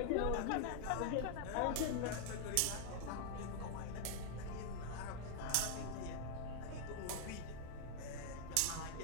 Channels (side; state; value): both; different; correlation 0.00